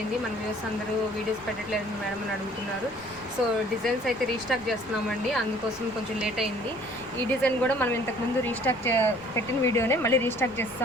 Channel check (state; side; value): noise; left; rumble, 23 dB below the sound